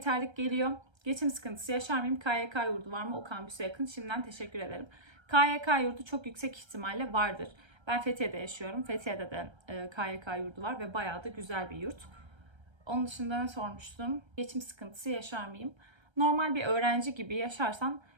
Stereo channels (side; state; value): left; late; 1.3 ms